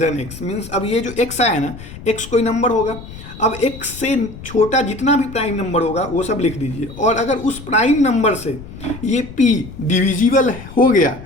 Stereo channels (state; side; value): noise; left; rumble, 14 dB below the sound